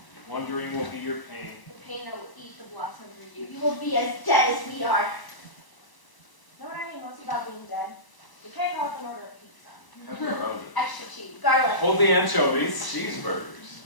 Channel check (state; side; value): late; right; 1.0 ms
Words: wondering will be your pain. The pain that will eat the blossom through you. You will be as dead as we are. Know what I hate most about being dead? You can't go off and order a pizza. Pepperoni. Extra cheese, garlic, Hold the anchovies. Cheeseburgers.